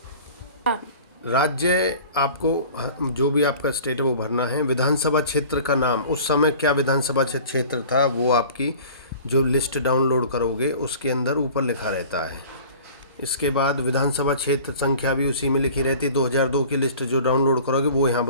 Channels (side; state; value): both; inverted; correlation -0.44